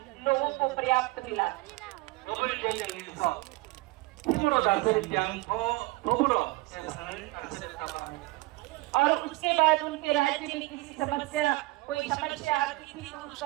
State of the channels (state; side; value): quieter; left; 21.2 dB